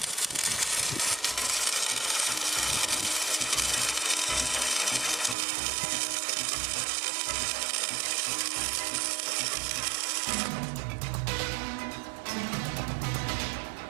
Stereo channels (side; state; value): left; drops out; at 5.4 s